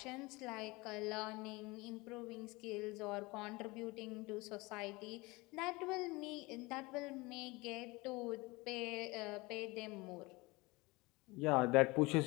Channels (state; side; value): quieter; right; 23.6 dB